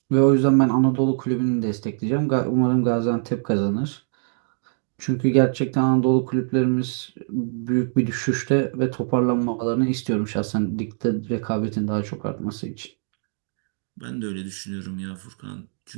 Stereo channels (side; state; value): left; silent; 62 dB below the other